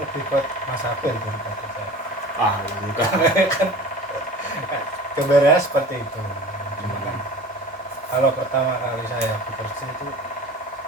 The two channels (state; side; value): normal; both; correlation 0.40